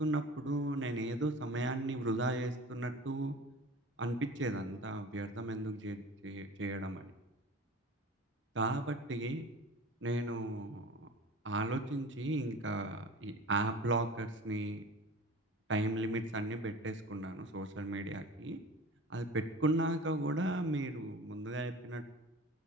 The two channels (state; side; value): normal; both; correlation 0.39